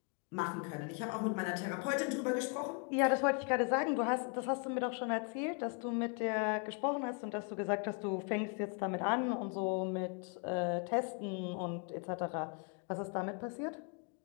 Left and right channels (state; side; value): quieter; right; 36.5 dB